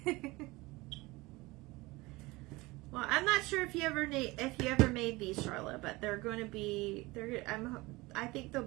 Well, I'm not sure if you ever made these, Charlotte, but they're going to be. I think they'll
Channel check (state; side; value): quieter; left; 22.0 dB